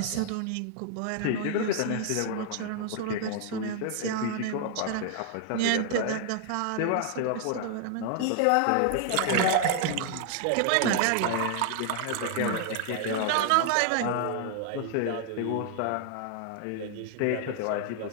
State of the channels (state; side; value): different; both; correlation 0.00